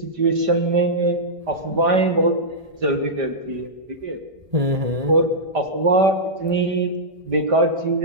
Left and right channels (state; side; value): late; left; 1.5 ms